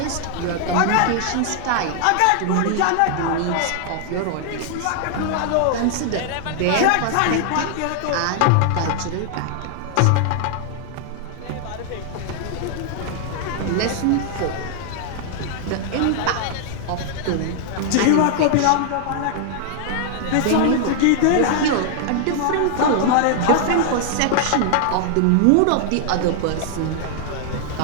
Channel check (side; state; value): both; different; correlation 0.00